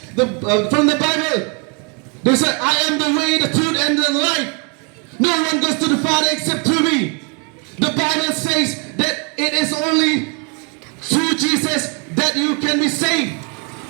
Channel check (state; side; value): quieter; left; 35.4 dB